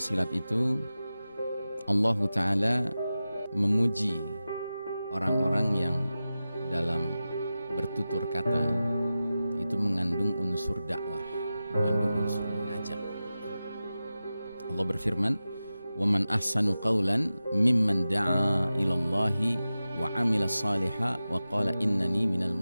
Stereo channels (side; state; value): both; inverted; correlation -0.94